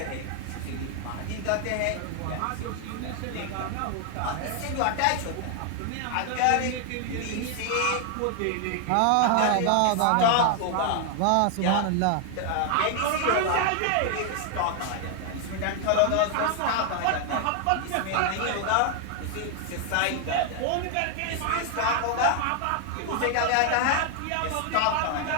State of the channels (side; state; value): both; different; correlation 0.00